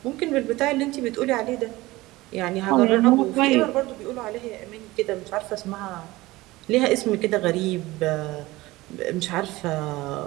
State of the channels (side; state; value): left; quieter; 19.4 dB